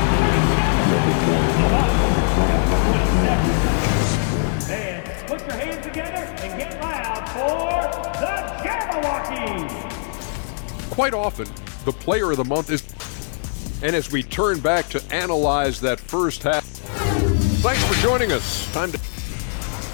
And put your hands together and get loud for the Jabberwockies. Quite often, the player of the month is... And as we turn back to analyze that first half... Thanks for joining us. Time to...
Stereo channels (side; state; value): right; silent; 65 dB below the other